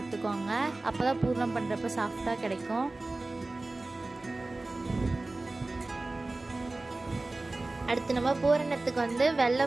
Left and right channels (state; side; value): quieter; left; 3.1 dB